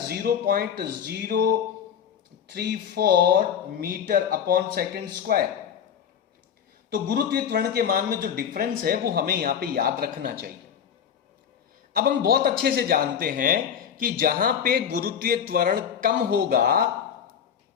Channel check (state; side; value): quieter; right; 8.2 dB